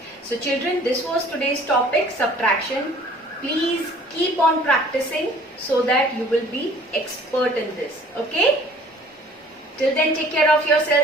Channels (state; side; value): normal; both; correlation 0.53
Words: So children, this was today's topic, subtraction. Please keep on practicing so that you will be expert in this. Okay? Till then, take care of